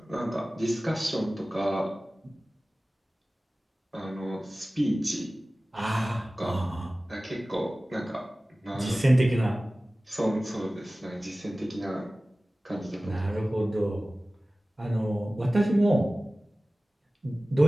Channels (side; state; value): both; normal; correlation 0.97